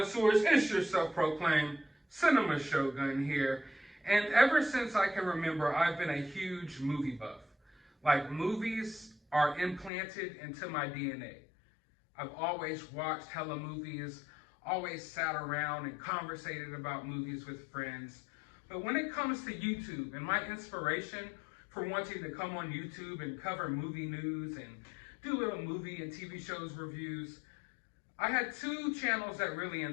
It's your self-proclaimed cinema shogun here. And ever since I can remember, I've been a huge movie buff. Like, movies are implanted into my DNA. I've always watched hella movies, always sat around and conversated about movies with friends. But when it comes to YouTube and my inspiration for wanting to come on YouTube and cover movie news and do little movie and TV shows reviews, I had two channels that really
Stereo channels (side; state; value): right; drops out; at 9.9 s